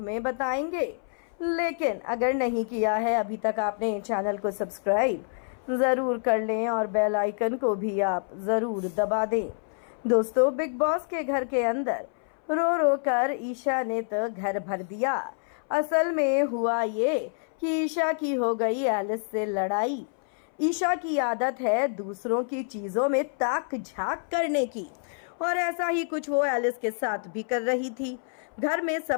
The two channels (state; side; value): silent; right; 60 dB below the other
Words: बताएंगे। लेकिन अगर नहीं किया है अभी तक आपने चैनल को सब्सक्राइब ज़रूर कर लें और बेल आइकन को भी आप ज़रूर दबा दें। दोस्तों, बिग बॉस के घर के अंदर रो रो कर ईशा ने तो घर भर दिया। असल में हुआ ये कि ईशा की हो गई एलिस से लड़ाई। ईशा की आदत है दूसरों की चीज़ों में ताक झांक करने की, और ऐसा ही कुछ वो एलिस के साथ भी कर रही थी। घर में